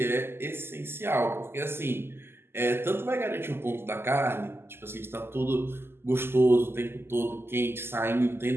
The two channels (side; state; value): left; late; 0.12 ms